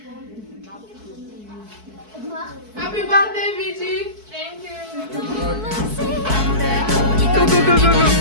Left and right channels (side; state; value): left; late; 4.6 ms